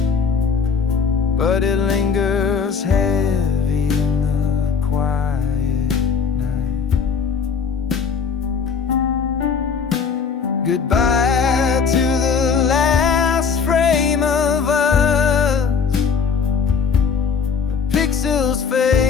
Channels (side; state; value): right; quieter; 6.0 dB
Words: but it lingers heavy in the quiet. Goodbye to the last frame of us. The pixels